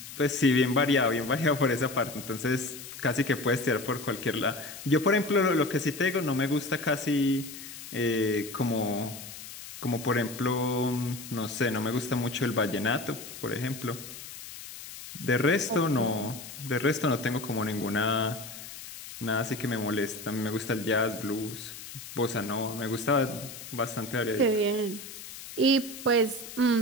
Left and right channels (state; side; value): noise; left; hiss, 13 dB below the sound